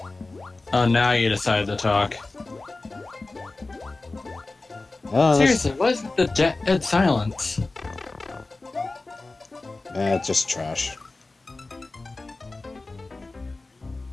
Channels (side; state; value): right; quieter; 3.3 dB